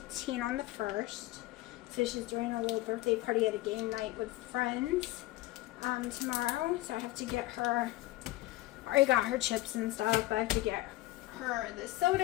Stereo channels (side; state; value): right; quieter; 17.8 dB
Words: on the 1st. So she's doing a little birthday party at a game night with friends tomorrow. So I have to get her, I already got her chips and stuff, but I have to get her the